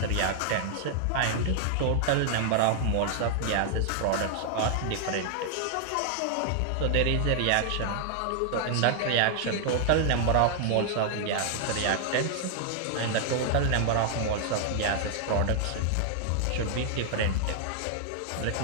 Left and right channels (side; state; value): both; different; correlation -0.01